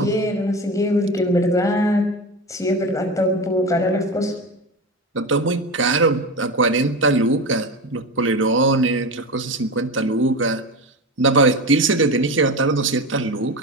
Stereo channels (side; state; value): both; normal; correlation 0.23